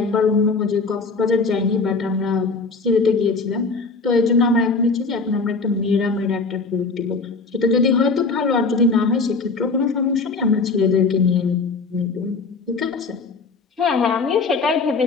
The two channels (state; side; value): quieter; right; 4.2 dB